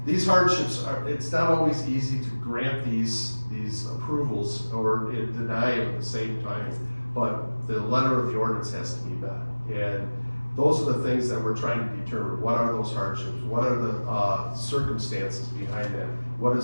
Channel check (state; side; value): inverted; both; correlation -1.00